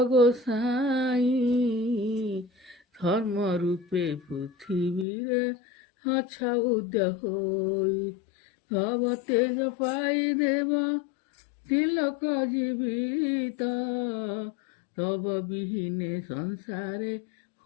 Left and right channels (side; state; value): right; drops out; at 5.1 s